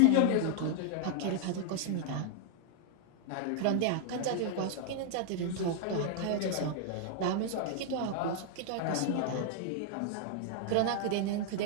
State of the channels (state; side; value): different; both; correlation 0.00